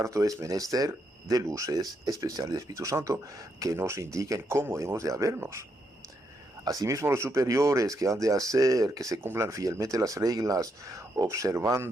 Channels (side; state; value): both; normal; correlation 0.79